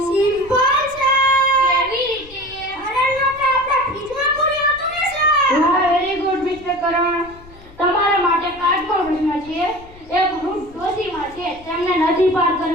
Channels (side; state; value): left; noise; rumble, 21 dB below the sound